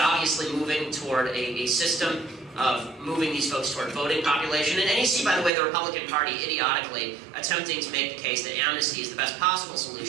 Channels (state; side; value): drops out; left; at 5.5 s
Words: moving toward a system of moving these folks toward voting population. And you see, by the way, the Republican Party idiotically attempting to make the case that amnesty is the best possible